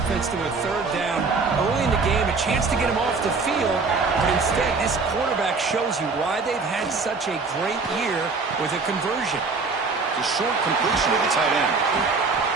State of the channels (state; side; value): quieter; left; 4.3 dB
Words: to a third down early in the game, a chance to get him off the field. But instead, this quarterback shows you why they've had such a great year with a conversion. The short completion of the tight end.